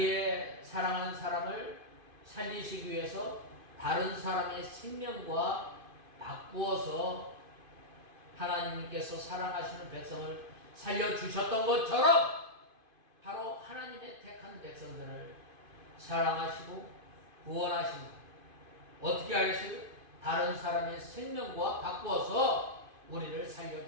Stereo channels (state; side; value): late; left; 2.5 ms